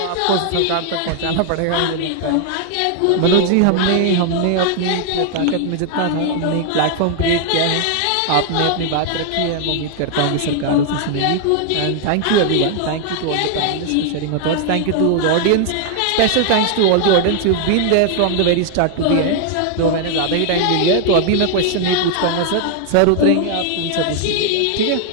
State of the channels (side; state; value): both; different; correlation 0.00